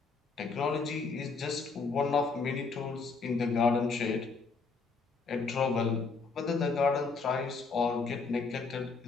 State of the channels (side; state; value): right; quieter; 4.5 dB